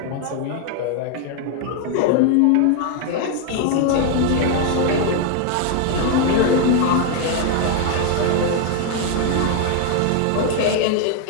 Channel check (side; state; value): both; different; correlation 0.00